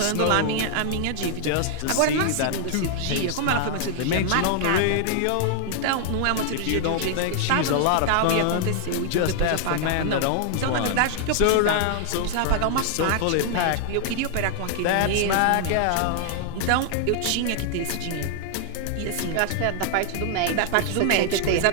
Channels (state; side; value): different; both; correlation 0.00